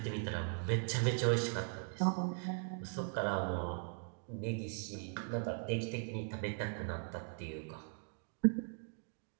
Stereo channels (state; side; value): silent; left; 51 dB below the other